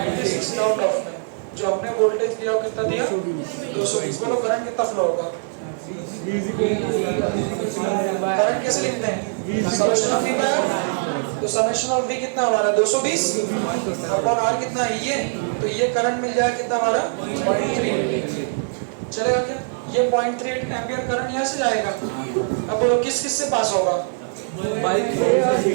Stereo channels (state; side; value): silent; left; digital silence